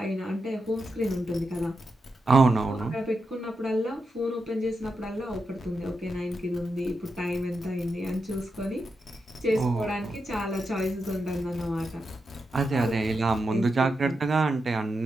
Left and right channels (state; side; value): normal; both; correlation 0.87